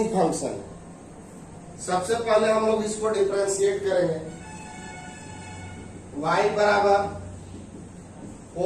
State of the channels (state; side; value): identical; both; correlation 1.00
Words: फंक्शन। सबसे पहले हम लोग इसको डिफरेंशिएट करेंगे। y बराबर